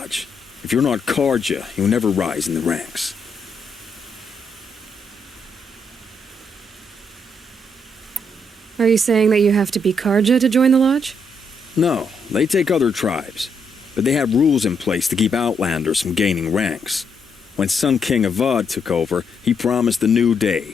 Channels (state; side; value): normal; both; correlation 0.76